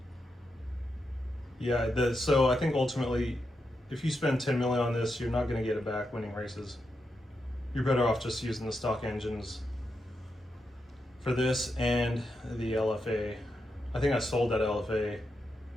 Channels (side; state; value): both; normal; correlation 0.85